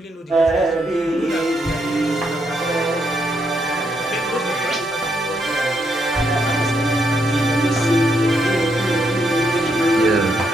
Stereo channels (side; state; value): both; normal; correlation 0.77